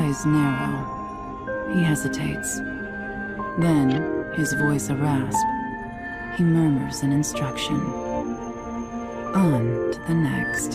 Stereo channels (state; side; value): identical; both; correlation 1.00